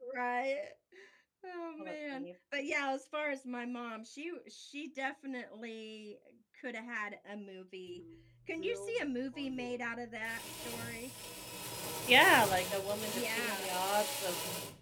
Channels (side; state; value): both; identical; correlation 1.00